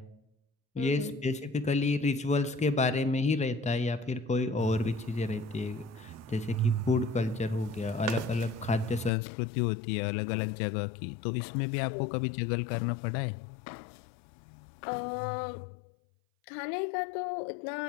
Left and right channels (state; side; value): drops out; right; at 9.1 s